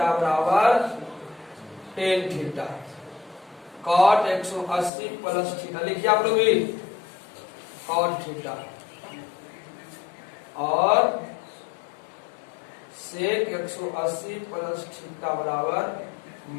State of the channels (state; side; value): drops out; right; at 4.9 s